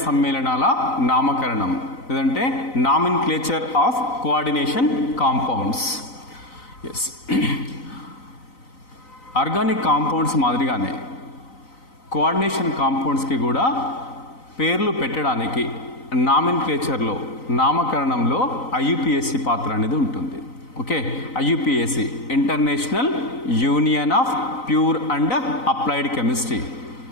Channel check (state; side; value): late; right; 3.9 ms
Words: సమ్మేళనాల నామకరణం, లేదంటే nomenclature of coordination compounds. Yes, organic compounds మాదిరిగానే కోఆర్డినేషన్ కాంపౌండ్స్కి కూడా పేర్లు పెట్టడానికి నామిన్క్లేచర్లో నామకరణంలో ఐయుపిఎస్సి పాత్ర అనేది ఉంటుంది. Okay, IUPAC International Union of Pure and Applied Chemistry